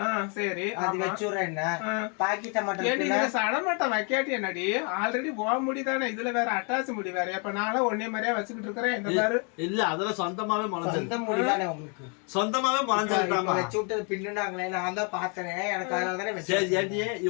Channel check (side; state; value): right; quieter; 36.5 dB